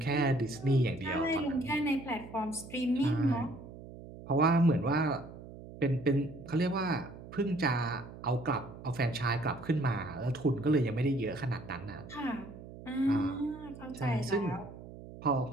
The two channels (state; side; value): noise; right; hum, 15 dB below the sound